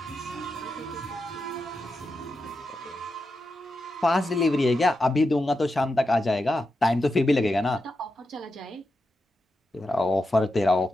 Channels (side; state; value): both; normal; correlation 0.88